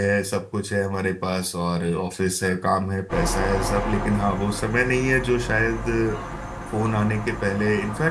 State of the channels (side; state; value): both; identical; correlation 1.00